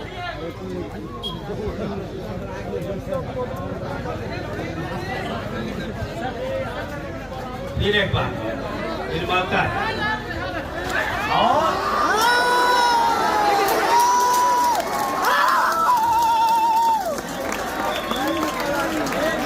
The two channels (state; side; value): identical; both; correlation 1.00